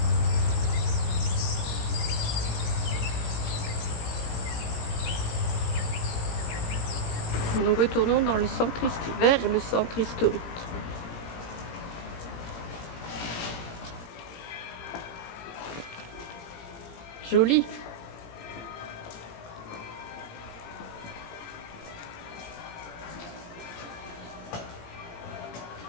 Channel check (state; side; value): late; right; 17 ms